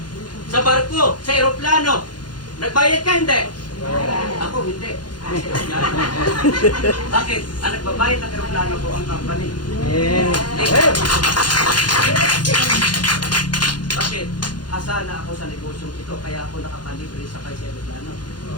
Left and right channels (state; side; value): late; right; 0.71 ms